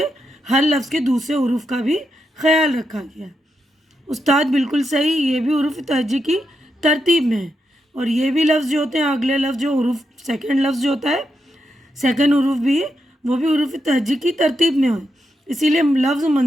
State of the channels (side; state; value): both; normal; correlation 0.84